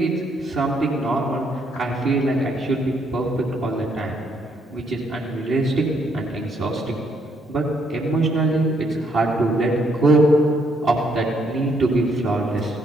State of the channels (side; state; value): both; normal; correlation 0.72